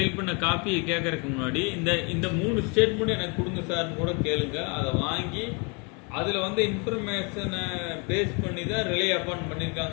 பண்ண காப்பியை கேட்கறதுக்கு முன்னாடி இந்த 3 ஸ்டேட்மெண்ட் எனக்கு கொடுங்க சார்னு கூட கேளுங்க. அதை வாங்கி அதில் இன்ஃபர்மேஷனை பேஸ் பண்ணி தான் ரிலே அப்பான்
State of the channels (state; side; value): quieter; right; 33.2 dB